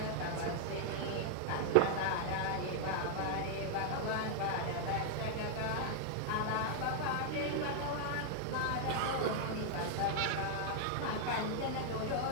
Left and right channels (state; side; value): different; both; correlation 0.00